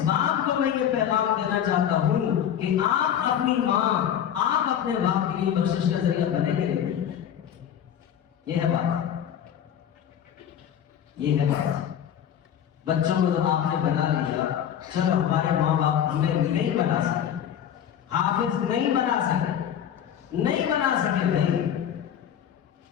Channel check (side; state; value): right; quieter; 9.5 dB